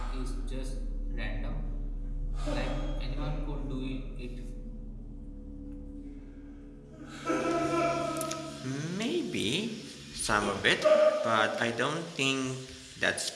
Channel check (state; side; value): identical; both; correlation 1.00